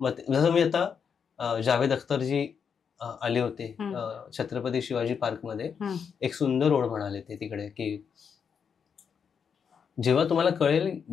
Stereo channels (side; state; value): right; quieter; 6.8 dB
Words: जसं मी आता जावेद अख्तरजी आले होते छत्रपती शिवाजी पार्कमध्ये, एक सुंदर ओळ म्हणाले ते तिकडे, की जेव्हा तुम्हाला कळेल